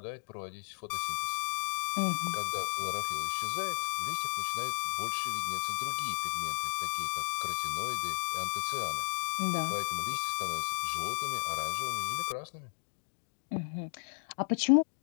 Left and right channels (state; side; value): silent; right; digital silence